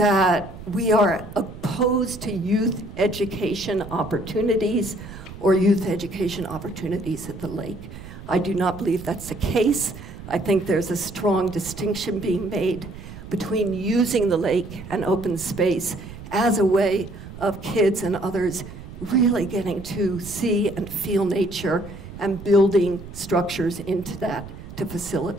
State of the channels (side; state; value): right; noise; rumble, 14 dB below the sound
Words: we are opposed to youth education opportunities or youth education opportunities at the lake. I do not believe that's the case. I think there's a strong distinction being made between using the lake and open space as a way of kids and others really getting to see and feel nature and building structures into that to